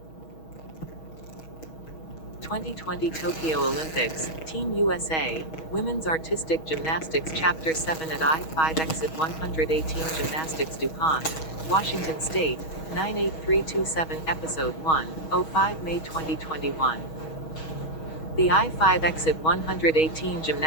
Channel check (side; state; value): right; late; 6.3 ms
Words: Tokyo Olympics, Team USA, Women's Artistic Gymnastics Chapter 7 at I-5 Exit 118 Gymnastics DuPont, Washington State, 98327 Episode 1, 05 May 2021. The I-5 Exit 118